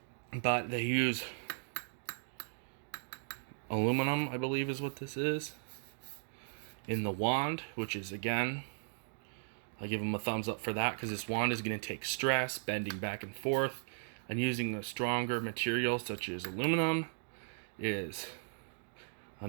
But they use aluminum, I believe is what this is, in the wand, which is, again, I'll give them a thumbs up for that, because this wand is going to take stress, bending back and forth, and using a stronger material such as aluminum is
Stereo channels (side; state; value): left; silent; digital silence